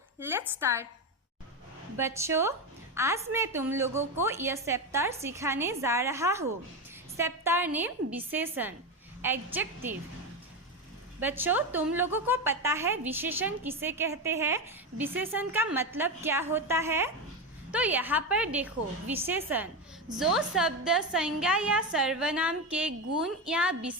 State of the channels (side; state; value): both; normal; correlation 0.14